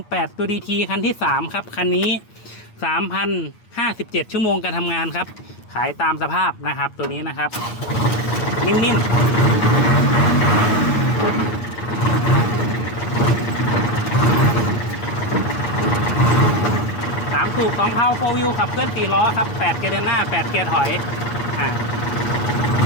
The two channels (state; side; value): late; right; 9.4 ms